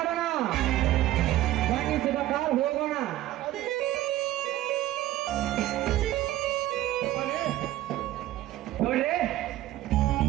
ಬನ್ನಿಸಿದ ಕಾರ್ ಹೋಗೋಣ. ನೋಡ್ರಿ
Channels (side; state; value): left; quieter; 14.8 dB